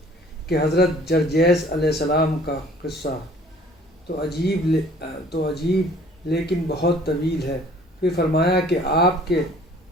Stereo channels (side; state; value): both; normal; correlation 0.54